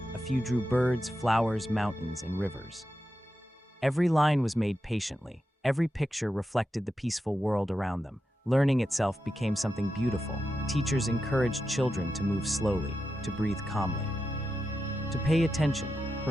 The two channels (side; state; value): both; normal; correlation 0.89